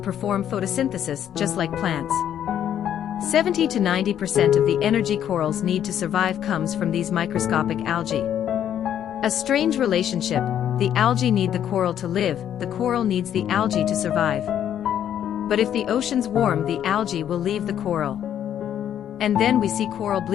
perform photosynthesis just like plants. 70 to 90% of the energy corals need to survive comes from these microscopic algae. A strange relationship. The algae need the coral to live, the coral needs the algae to survive. But if the oceans warm, the algae will leave the coral. And then we see coral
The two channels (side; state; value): right; quieter; 10.1 dB